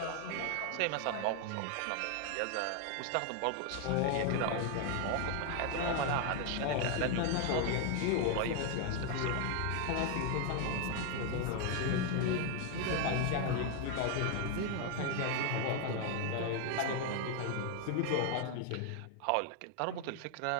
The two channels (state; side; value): different; both; correlation 0.01